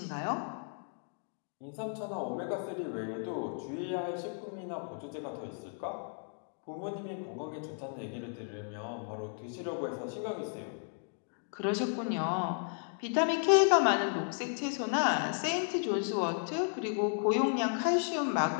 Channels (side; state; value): right; silent; 55 dB below the other